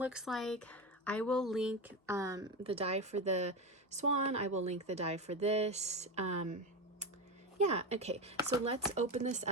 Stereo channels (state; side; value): normal; both; correlation 0.18